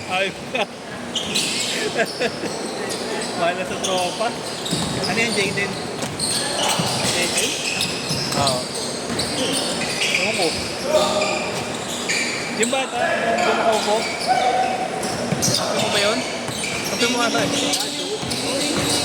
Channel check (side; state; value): both; identical; correlation 1.00